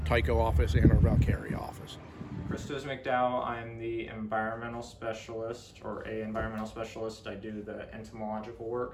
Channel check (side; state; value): both; identical; correlation 1.00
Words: Tyco office and our Valkyrie office. Christos McDowell, I'm the environmental specialist, or a environmental specialist. I do the entomological